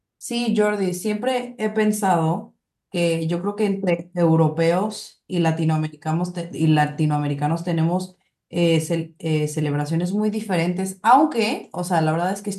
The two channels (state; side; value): identical; both; correlation 1.00